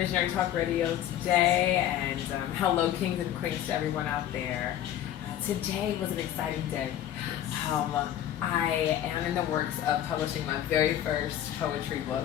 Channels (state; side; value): quieter; right; 11.4 dB